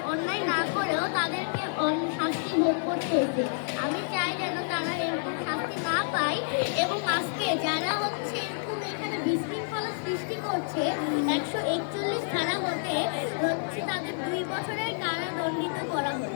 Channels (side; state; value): right; silent; digital silence